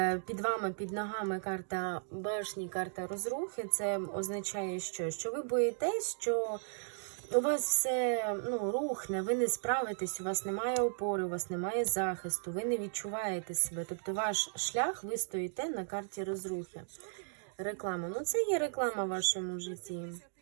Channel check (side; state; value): left; silent; digital silence